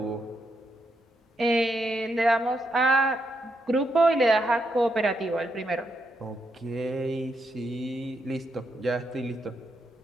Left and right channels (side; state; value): both; normal; correlation 0.80